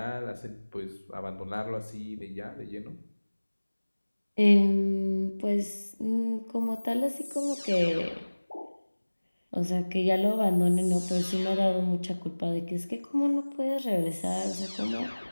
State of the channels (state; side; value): inverted; both; correlation -1.00